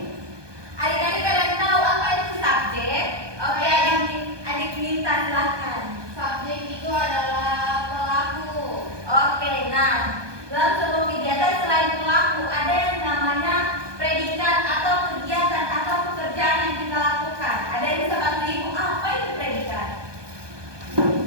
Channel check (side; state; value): left; late; 1.2 ms